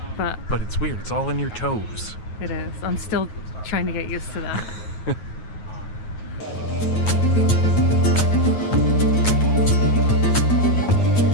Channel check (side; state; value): right; late; 9.4 ms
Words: But it's weird. It's all in your toes. it is. I'm still trying to get used to that.